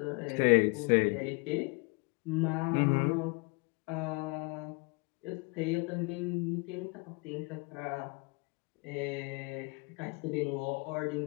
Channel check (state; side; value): quieter; right; 30.4 dB